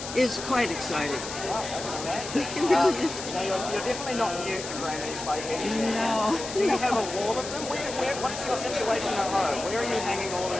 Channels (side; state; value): left; noise; hiss, 9 dB below the sound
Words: is quite exciting. It really is. You're definitely not new to Grammys by any means. No. Do you have a wall of them? What's your situation at home? Where are you hanging all